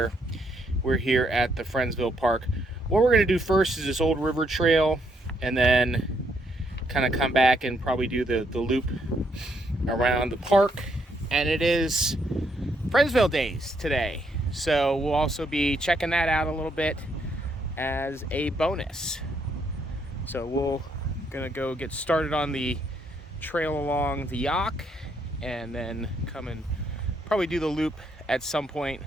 we're here at the Friendsville Park. What we're going to do first is this old river trail, and then kind of come back and probably do the loop around the park. And it is Friendsville Days today, so we'll also be checking that out a little bit as a bonus. So we're gonna go get started on the trail along the Youghiogheny, and then come and probably do the loop at some point,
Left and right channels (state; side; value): normal; both; correlation 0.73